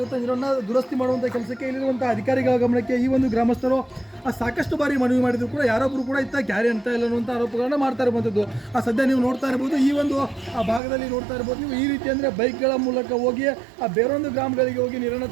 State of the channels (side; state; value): left; drops out; at 10.8 s